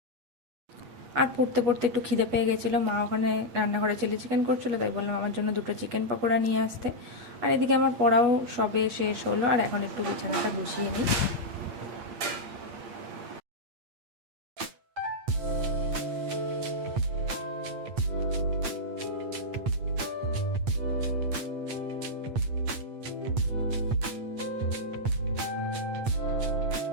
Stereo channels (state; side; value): late; left; 8.6 ms